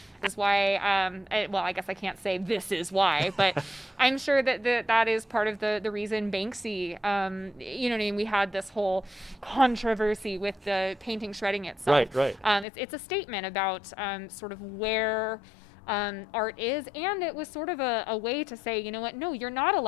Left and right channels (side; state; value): right; drops out; at 12.7 s